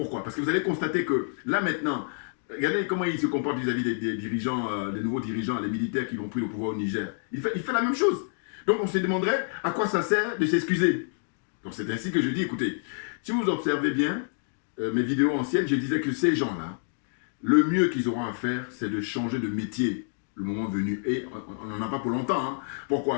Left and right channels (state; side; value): silent; right; digital silence